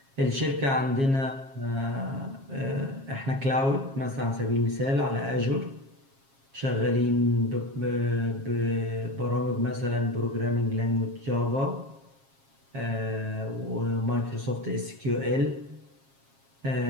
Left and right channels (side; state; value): left; late; 7.4 ms